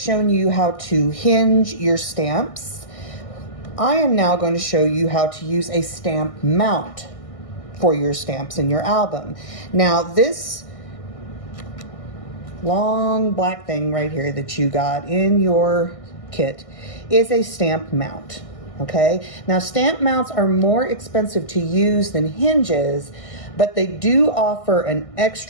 you how to hinge your stamps, I am now going to show you how to use a stamp mount for your stamps in your album. Now, this long black thing right here that you got in your kit is a stamp mount, okay? Now, stamp mounts are more expensive to use than hinges, but they do offer an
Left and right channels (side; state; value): right; late; 1.6 ms